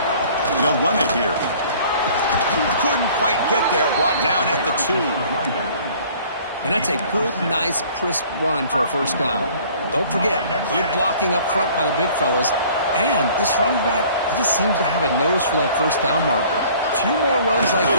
They'll run it here. Couldn't quite get there. Brought down at the 2. And that's a good, nice, crisp run for a first down. Don't forget, good blocking up front by the big fellas. And this running back, he just seems to have a nose for that first down marker. A few more runs like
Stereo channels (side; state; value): both; inverted; correlation -0.52